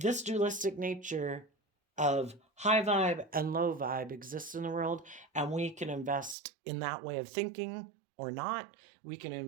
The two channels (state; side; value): drops out; left; at 6.4 s